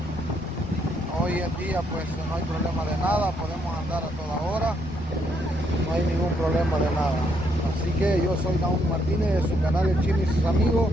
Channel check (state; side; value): normal; both; correlation 0.74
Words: Hoy en día pues no hay problema de nada, podemos andar a toda hora, no hay ningún problema de nada. Así que yo soy Naum Martínez de su canal El Chino y sus amigos,